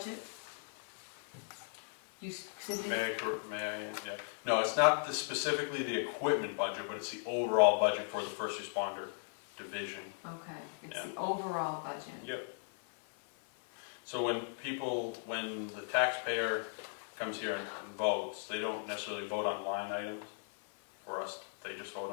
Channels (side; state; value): right; silent; 53 dB below the other